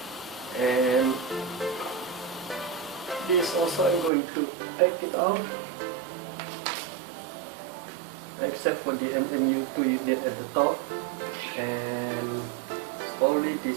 and this also I'm going to take it out, except for the MU2 unit at the top, and slowly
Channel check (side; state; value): left; drops out; at 4.1 s